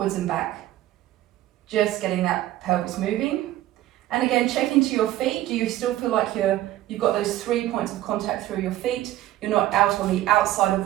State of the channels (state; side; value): quieter; left; 14.4 dB